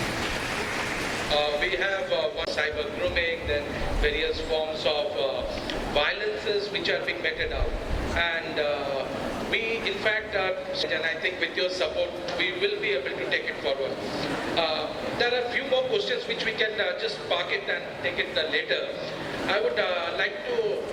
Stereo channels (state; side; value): identical; both; correlation 1.00